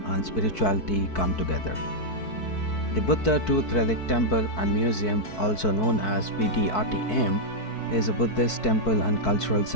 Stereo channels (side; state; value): right; late; 4.6 ms